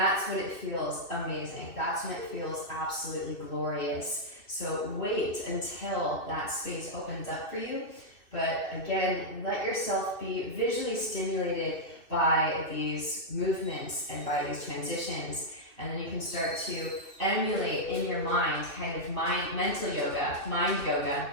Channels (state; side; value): late; right; 2.6 ms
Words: when it feels amazing. That's when it feels absolutely glorious. So wait until that space opens up for you. But again, let yourself be visually stimulated by these movements and by these transitions. And then you can start to emulate in your mind, kind of mental yoga, mind yoga.